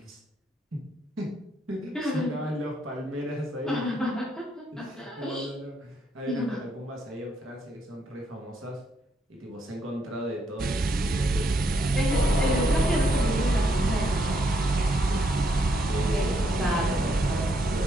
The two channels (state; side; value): normal; both; correlation 0.75